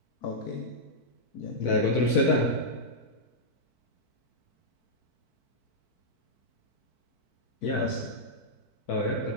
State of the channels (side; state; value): right; late; 4.5 ms